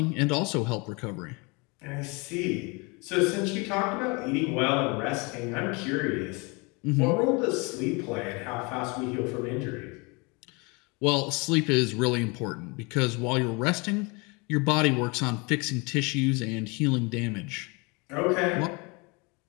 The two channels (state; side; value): quieter; right; 28.9 dB